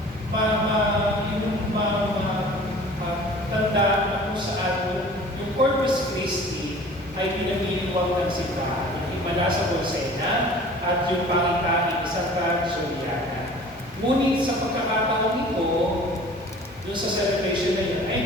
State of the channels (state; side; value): normal; both; correlation 0.45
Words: tandaan na kung saan yung Corpus Christi ay pinamiliwag ng simbahan, yung himala sa Bolsena at yung pangitain ni Santa Juliana. Ngunit sa pagkakataon ito, doon sa celebration na yun,